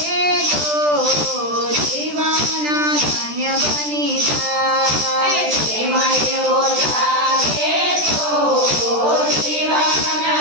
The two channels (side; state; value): left; late; 13 ms